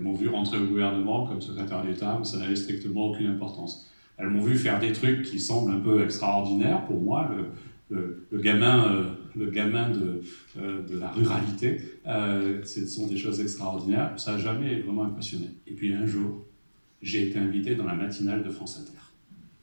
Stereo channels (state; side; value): inverted; both; correlation -1.00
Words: m'ont vu rentrer au gouvernement comme secrétaire d'État, mais ça n'avait strictement aucune importance. Elles m'ont vu faire des trucs qui semblent un peu extraordinaires pour moi, le gamin de la ruralité. Ce sont des choses extraordinaires, ça n'a jamais vraiment impressionné. Et puis un jour, j'ai été invité dans la matinale de France Inter.